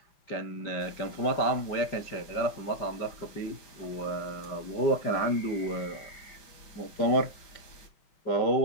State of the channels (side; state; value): right; late; 5.1 ms